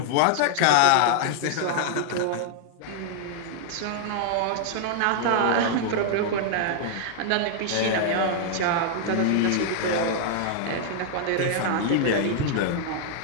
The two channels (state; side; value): different; both; correlation -0.01